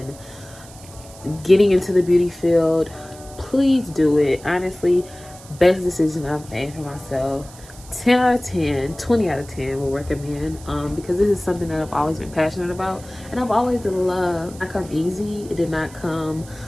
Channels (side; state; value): right; noise; hiss, 20 dB below the sound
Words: getting into the beauty field, please do it. Honestly, best decision I've made for myself. 10 out of 10, 20 out of 10 will recommend because this is something that I've always been passionate about and I've always loved. It did not come easy. It did not come